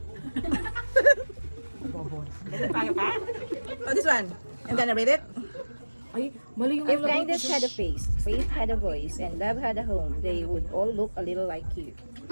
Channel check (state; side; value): inverted; both; correlation -1.00